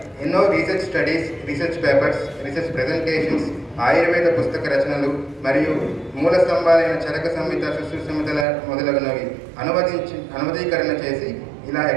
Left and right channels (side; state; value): left; drops out; at 8.5 s